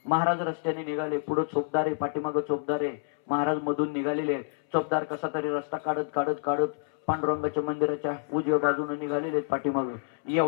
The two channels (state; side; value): silent; right; 59 dB below the other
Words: महाराज रस्त्याने निघाले, पुढे चोपदार आहे, पाठीमागे चोपदार आहे. महाराज मधून निघालेले. चोपदार कसा तरी रस्ता काढत काढत काढत पांडुरंगाच्या मंदिराच्या उजव्या बाजूने निघालेले पाठीमागे.